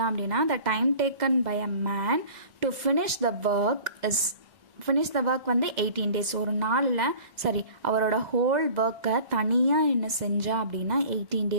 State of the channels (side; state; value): left; late; 2.0 ms